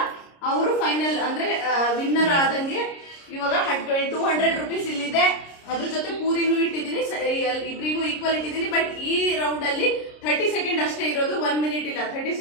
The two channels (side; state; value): right; late; 30 ms